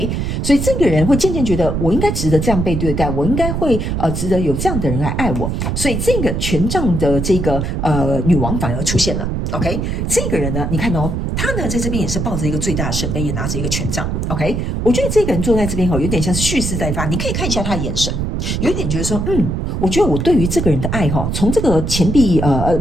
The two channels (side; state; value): right; noise; rumble, 1 dB below the sound